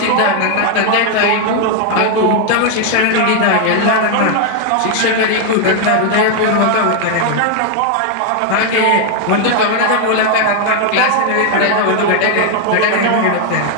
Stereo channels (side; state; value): both; different; correlation 0.00